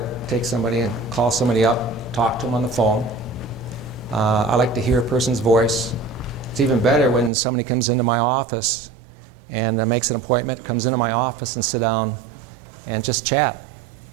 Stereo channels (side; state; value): left; drops out; at 7.3 s